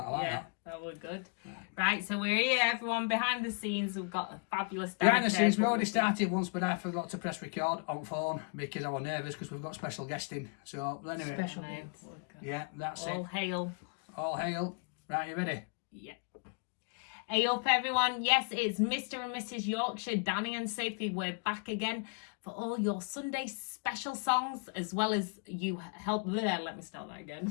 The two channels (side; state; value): right; quieter; 39.1 dB